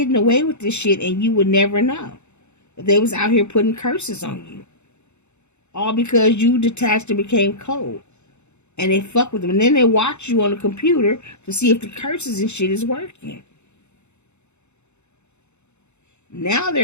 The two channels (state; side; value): late; right; 0.82 ms